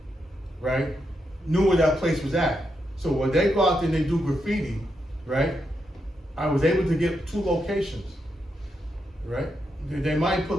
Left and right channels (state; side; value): normal; both; correlation 0.83